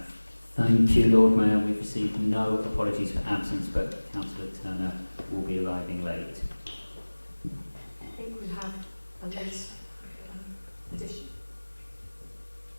Thank you, Lord Mayor. We've received no apologies for absence, but Councillor Turner will be arriving late. I think we have a list addition.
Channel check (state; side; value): inverted; both; correlation -1.00